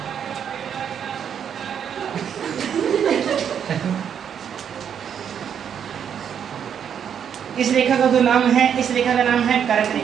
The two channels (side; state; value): left; quieter; 8.2 dB